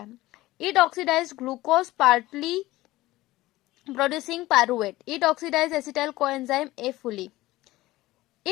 It oxidize glucose partly producing pyruvate. It oxidize acetyl coenzyme A fully.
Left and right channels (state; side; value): quieter; right; 17.8 dB